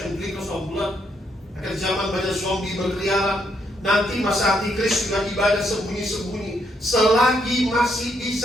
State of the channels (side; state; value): both; normal; correlation 0.75